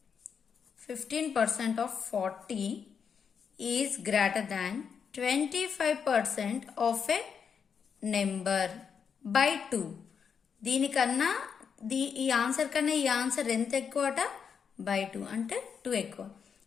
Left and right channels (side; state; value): right; quieter; 6.7 dB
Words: 15% of 40 is greater than 25% of a number by 2. దీనికన్నా ఈ ఆన్సర్ కన్నా ఈ ఆన్సర్ ఎంత ఎక్కువ అట? బై 2 అంటే 2 ఎక్కువ.